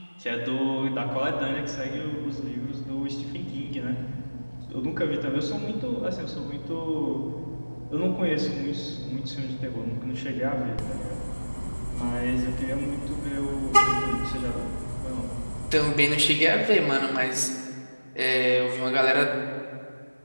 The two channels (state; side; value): inverted; both; correlation -1.00